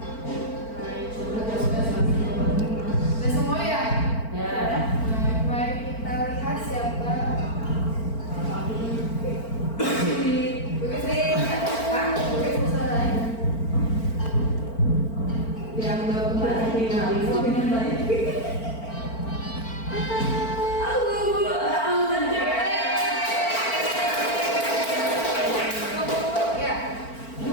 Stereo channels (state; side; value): late; right; 4.4 ms